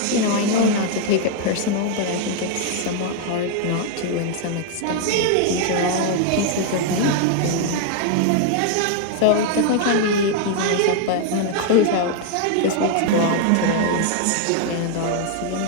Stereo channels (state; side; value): different; both; correlation 0.00